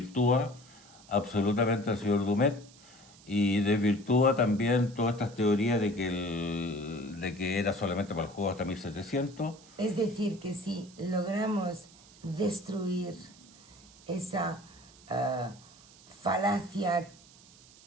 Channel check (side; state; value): right; noise; hiss, 23 dB below the sound